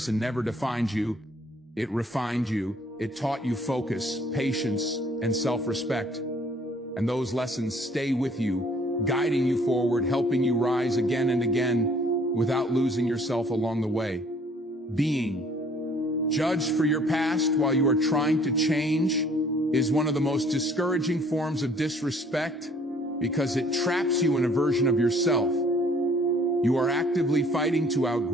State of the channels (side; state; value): both; normal; correlation 0.58